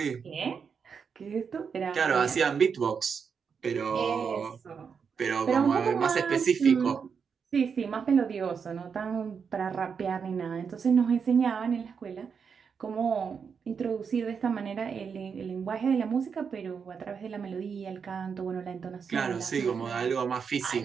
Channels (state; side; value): quieter; left; 6.3 dB